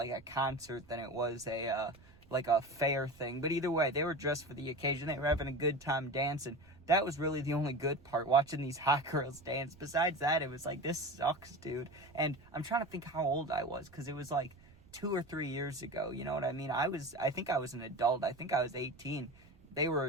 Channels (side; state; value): right; noise; rumble, 24 dB below the sound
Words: a concert than it was a fair thing. But either way, they were dressed for the occasion. They were having a good time dancing. That was really the only good part, watching these hot girls dance. Besides that, it was like, this sucks, dude. And I'm trying to think how old I was, because it was like 2 or 3 years ago, you know what I mean? I think I was an adult. I think I was 18. They were